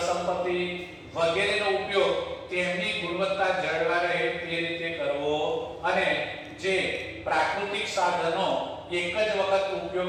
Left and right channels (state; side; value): identical; both; correlation 1.00